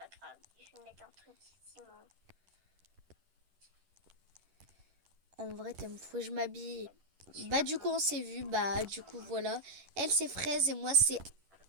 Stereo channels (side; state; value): left; late; 11 ms